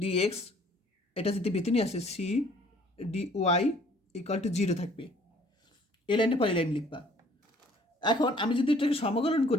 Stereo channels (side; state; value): both; normal; correlation 0.57